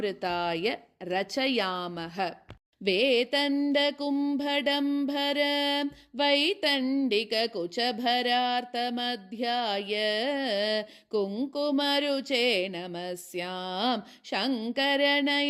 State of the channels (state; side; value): identical; both; correlation 1.00